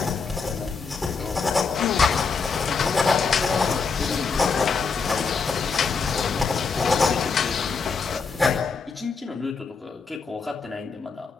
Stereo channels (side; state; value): right; quieter; 5.0 dB